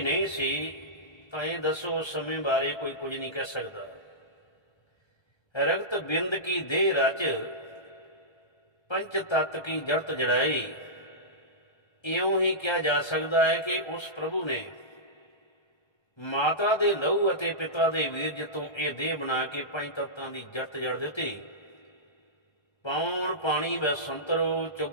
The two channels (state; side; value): late; right; 1.3 ms